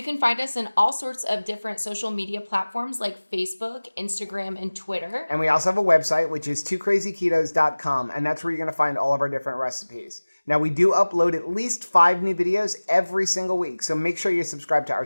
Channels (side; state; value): both; inverted; correlation -1.00